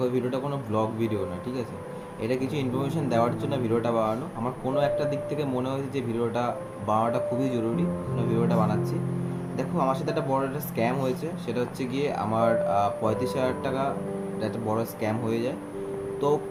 এই ভিডিওটা কোনো ব্লগ ভিডিও না, ঠিক আছে? এটা কিছু ইনফরমেশন দেওয়ার জন্য ভিডিওটা বানানো। আমার কোনো একটা দিক থেকে মনে হয়েছে যে ভিডিওটা বানানোটা খুবই জরুরি, ভিডিওটা বানাচ্ছি। দেখো, আমার সাথে একটা বড় একটা স্ক্যাম হয়েছে। সেটা হচ্ছে গিয়ে আমার 35,000 টাকা একটা বড় স্ক্যাম হয়ে যায়। তো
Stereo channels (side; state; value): both; identical; correlation 1.00